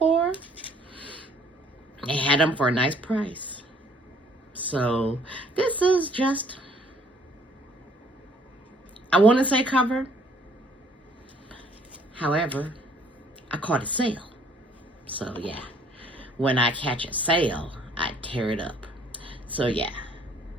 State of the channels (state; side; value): normal; both; correlation 0.60